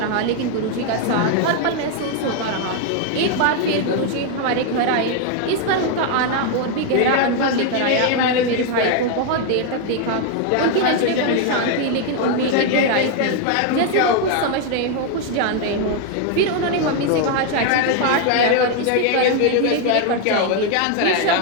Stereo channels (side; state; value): both; different; correlation 0.00